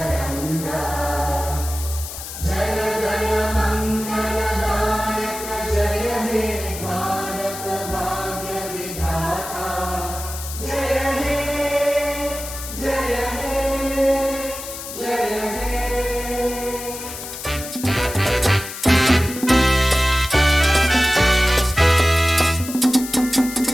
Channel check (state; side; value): noise; left; hiss, 10 dB below the sound